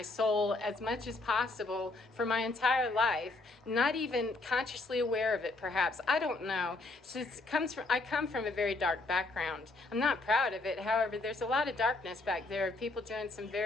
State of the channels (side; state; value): right; quieter; 3.1 dB